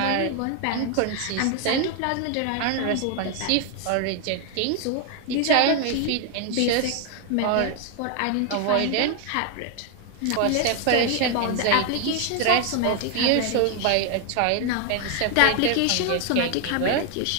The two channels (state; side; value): different; both; correlation 0.00